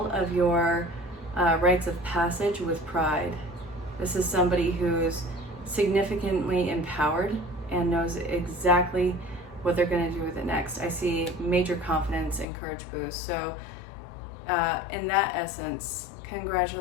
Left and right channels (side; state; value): right; drops out; at 12.5 s